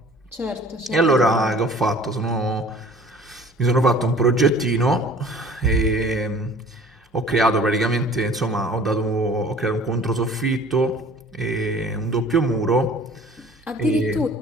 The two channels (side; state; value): both; normal; correlation 0.49